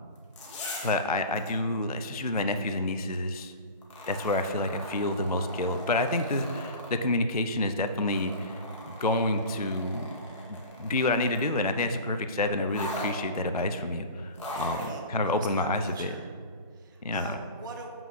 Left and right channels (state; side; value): inverted; both; correlation -0.35